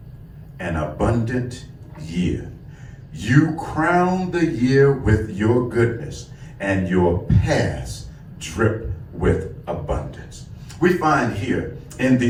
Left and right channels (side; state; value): both; identical; correlation 1.00